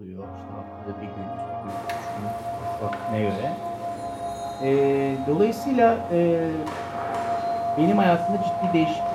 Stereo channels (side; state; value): both; identical; correlation 1.00